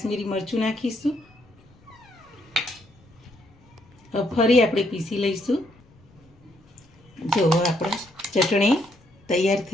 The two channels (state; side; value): noise; left; rumble, 29 dB below the sound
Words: મરચું નાખીશું. હવે ફરી આપણે પીસી લઈશું. જો આપણે ચટણી તૈયાર